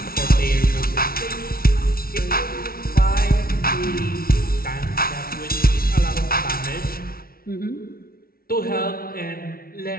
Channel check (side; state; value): right; late; 0.43 ms